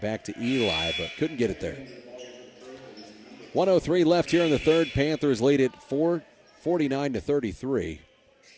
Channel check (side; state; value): both; identical; correlation 1.00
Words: back to Eli, but couldn't get it there. 1:03 left here in the third. Panthers lead it 49-33. We